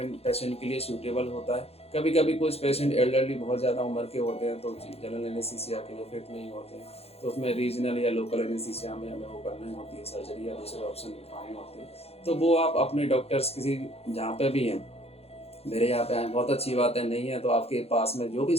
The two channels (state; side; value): late; right; 0.29 ms